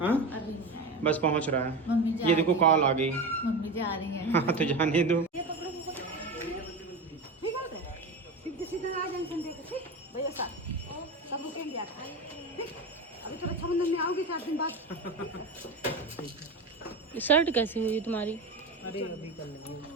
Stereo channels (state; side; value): quieter; left; 3.0 dB